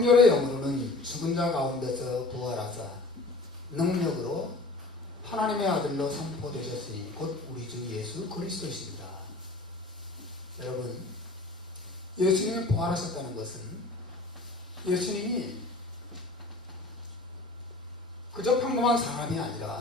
영으로는 죽은 자 가운데서 부활하사 능력으로 하나님의 아들로 선포되셨으니 곧 우리 주 예수 그리스도이십니다. 여러분, 예수님이 부활하셨다는 것은 예수님이 그저 평범한 사람이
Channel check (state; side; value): quieter; right; 3.1 dB